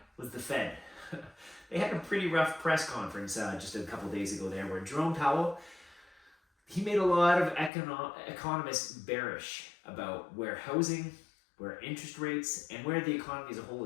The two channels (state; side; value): drops out; right; at 7.7 s